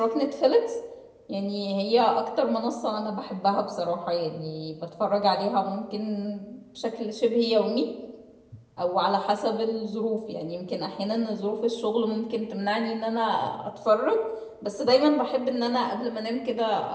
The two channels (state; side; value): identical; both; correlation 1.00